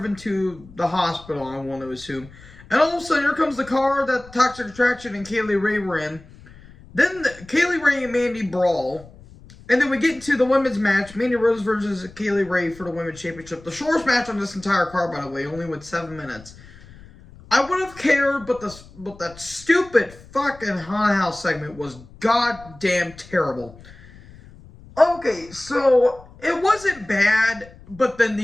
to the hospital, I want to assume. And all of a sudden, here comes the car that Toxic Attraction and Kaylee Ray were in. Then Kaylee Ray and Mandy brawl. And then we get into the women's match, Mandy Rose versus Kaylee Ray for the women's championship. The shortest match on this entire card, by the way, only went 7 minutes. I would have cared, but that stupid fucking haunted house segment was goddamn terrible. Okay, so it wasn't bad, but then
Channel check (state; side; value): noise; left; rumble, 21 dB below the sound